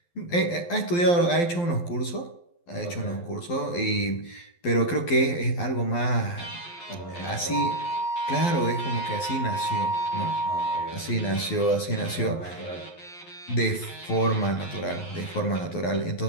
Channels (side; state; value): right; late; 12 ms